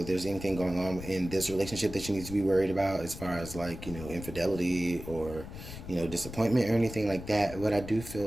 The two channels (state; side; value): noise; left; rumble, 11 dB below the sound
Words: there's anything going on in this relationship that you need to be worried about, as far as, like, you know, infidelity or, you know, disappointment or anything like that. What I do